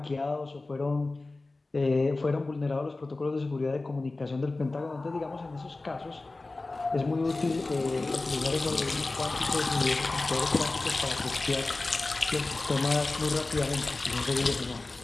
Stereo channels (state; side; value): quieter; right; 3.2 dB